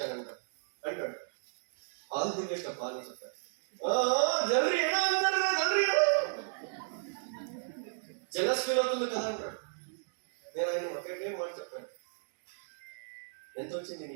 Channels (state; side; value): silent; left; digital silence